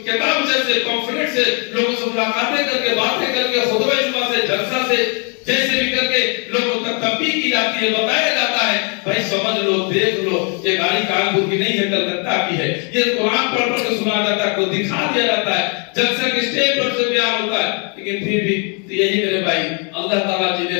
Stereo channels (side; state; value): right; quieter; 37.3 dB